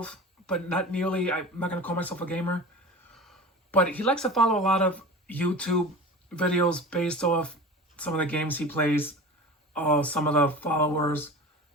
but not nearly. I'm not going to call myself a gamer. But he likes to follow a lot of YouTube videos based off some of the games he plays, some of the followers,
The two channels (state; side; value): normal; both; correlation 0.35